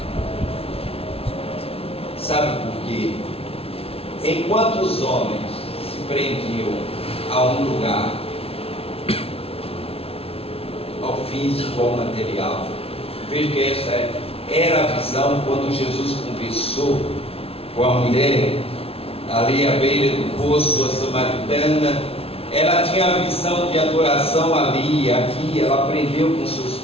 Sabe por quê? Enquanto os homens prendiam a um lugar, ao físico, ao material. Veja que essa era a visão quando Jesus conversou com a mulher ali à beira do poço, a samaritana. Ela tinha a visão de adoração ali, aqui. Ela aprendeu com seus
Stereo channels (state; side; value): late; right; 0.28 ms